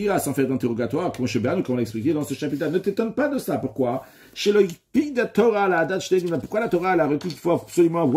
sans faire d'interrogatoire, comme on l'a expliqué dans ce chapitre. Ne t'étonne pas de ça. Pourquoi? Chez le de Torah, la date, pourquoi la Torah a requis qu'il faut absolument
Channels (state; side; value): identical; both; correlation 1.00